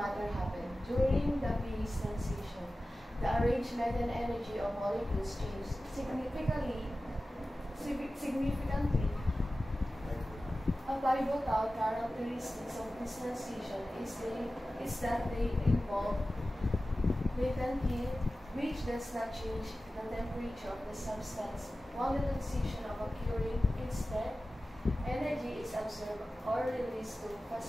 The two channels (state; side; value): normal; both; correlation 0.95